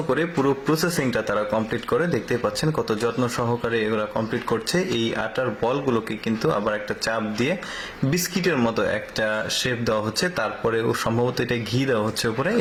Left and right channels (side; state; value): both; identical; correlation 1.00